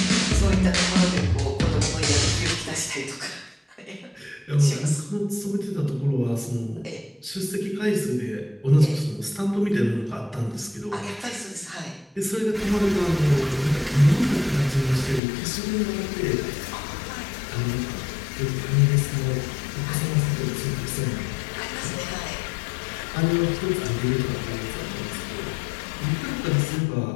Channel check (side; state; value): right; drops out; at 15.2 s